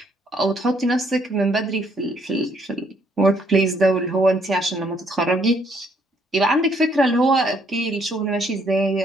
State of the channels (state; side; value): normal; both; correlation 0.68